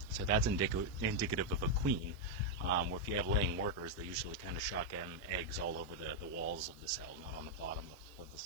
So that's indicative of a queen. Where if you have laying workers, they usually kind of shotgun eggs all over the walls of the cell, not on the bottom of the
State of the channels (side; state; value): right; noise; hiss, 27 dB below the sound